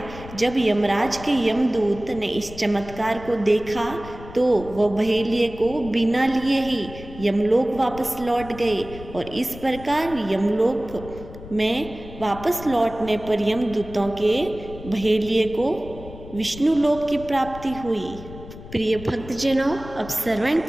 जब यमराज के यमदूत ने इस चमत्कार को देखा तो वह बहेलिये को बिना लिए ही यमलोक वापस लौट गए और इस प्रकार यमलोक में वापस लौटने पर यमदूतों के बहेलिये को विष्णु लोक की प्राप्ति हुई। प्रिय भक्तजनों, अब श्रवण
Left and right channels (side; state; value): left; noise; rumble, 15 dB below the sound